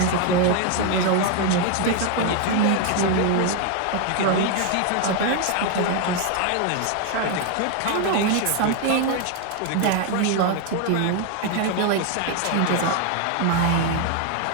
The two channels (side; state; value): both; different; correlation 0.01